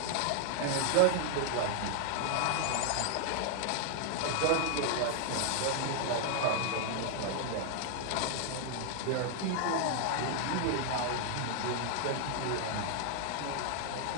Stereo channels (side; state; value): both; different; correlation 0.00